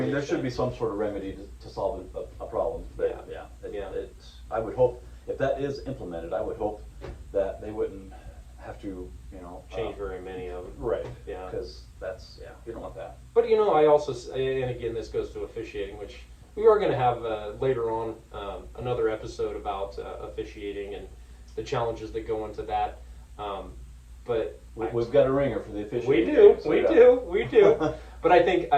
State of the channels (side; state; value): both; identical; correlation 1.00